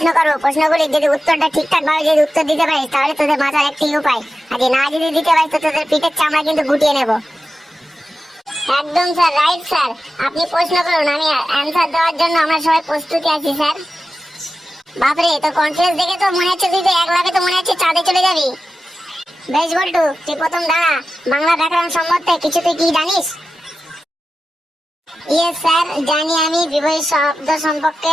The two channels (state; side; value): normal; both; correlation 0.93